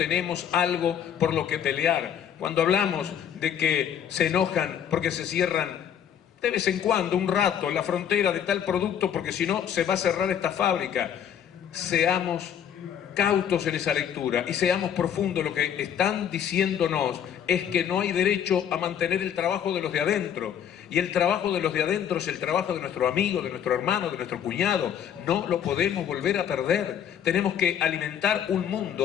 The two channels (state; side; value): quieter; right; 9.1 dB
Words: algo por lo que pelear. Cuando hablamos de que se enojan porque se cierran de vez en cuando, un rato, la frontera de tal producto, porque si no se va a cerrar esta fábrica, seamos cautos en esa lectura y seamos profundos. Lo que están diciéndonos es que no hay derecho a mantener el trabajo de los de adentro, y el trabajo de los de adentro es el trabajo de nuestro amigo, de nuestro hermano, de nuestro cuñado. No lo podemos volver a perder. Tenemos que alimentar un